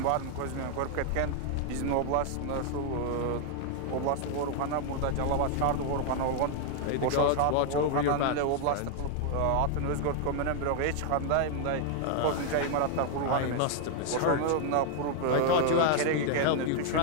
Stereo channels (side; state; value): both; different; correlation 0.00